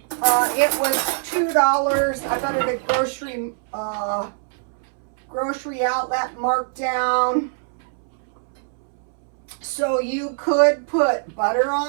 It was $2. I got it at grocery outlet marked down. So you could put butter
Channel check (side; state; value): left; silent; 64 dB below the other